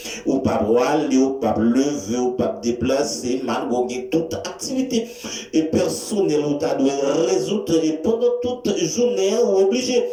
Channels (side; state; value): both; identical; correlation 1.00